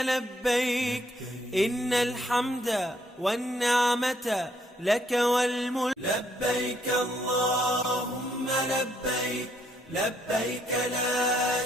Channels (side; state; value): both; normal; correlation 0.70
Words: إن الحمد والنعمة لك والملك. لبيك اللهم لبيك، لبيك لا